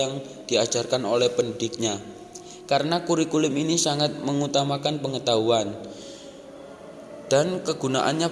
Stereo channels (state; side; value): identical; both; correlation 1.00